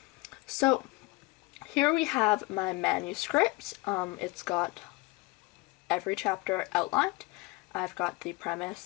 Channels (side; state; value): right; quieter; 23.0 dB